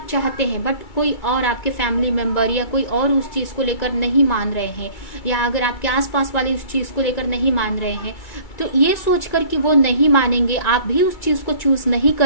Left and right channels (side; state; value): right; late; 2.3 ms